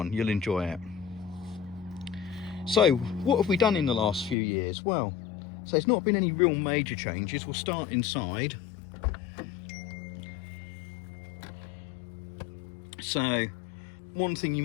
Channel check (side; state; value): right; drops out; at 4.4 s